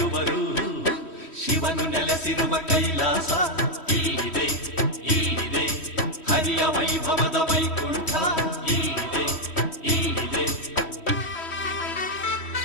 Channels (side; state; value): right; late; 3.1 ms